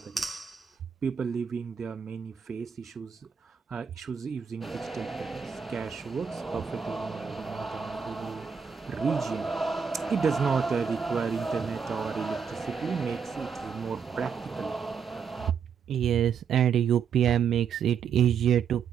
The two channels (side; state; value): left; quieter; 6.7 dB